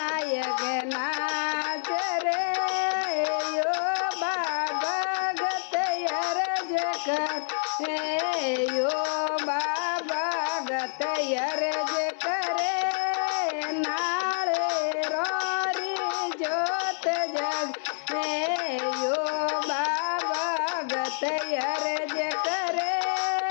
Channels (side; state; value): right; silent; 59 dB below the other